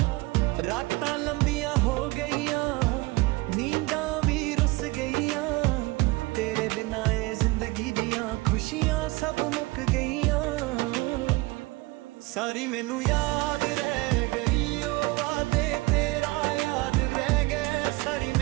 ਰਾਤਾਂ ਲੰਬੀਆਂ ਹੋ ਗਈਆਂ, ਨੀਂਦਾਂ ਵੀ ਰੁੱਸ ਗਈਆਂ, ਤੇਰੇ ਬਿਨਾਂ ਇਹ ਜ਼ਿੰਦਗੀ ਦੀਆਂ ਖੁਸ਼ੀਆਂ ਸਭ ਮੁੱਕ ਗਈਆਂ। ਸਾਰੀ ਮੈਨੂੰ ਯਾਦ ਰਹਿ ਗਈ ਉਹ ਵਾਦੇ ਤੇਰਾ ਯਾਦ ਰਹਿ ਗਏ, ਸਾਰੀ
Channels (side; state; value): left; quieter; 22.5 dB